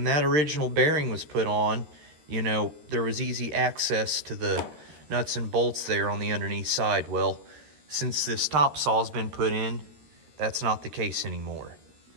that original bearing was put on, you know, there was easy access to the nuts and bolts there on the underneath side. Well, since this top saw's been put in, that's not the case anymore.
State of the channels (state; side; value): late; left; 13 ms